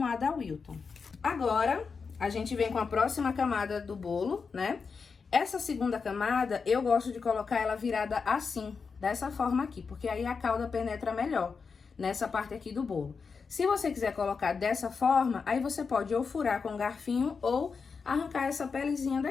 da Wilton. Agora, a gente vem com a próxima camada do bolo, né? Essa segunda camada, eu gosto de colocar ela virada assim, dessa forma aqui, porque aí a calda penetra melhor nessa parte aqui do bolo. Se você quiser colocar dessa forma, aí você pode ou furar com um garfinho ou arrancar essa pelezinha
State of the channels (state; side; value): quieter; right; 5.3 dB